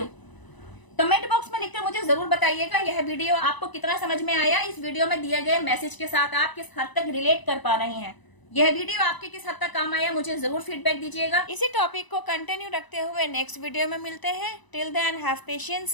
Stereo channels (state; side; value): late; right; 1.0 ms